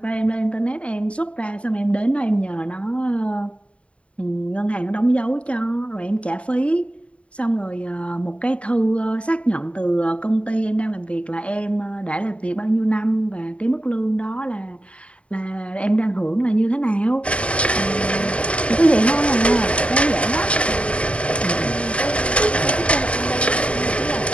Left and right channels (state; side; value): late; right; 0.062 ms